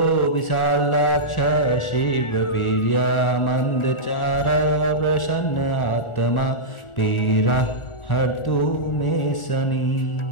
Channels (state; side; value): late; right; 1.4 ms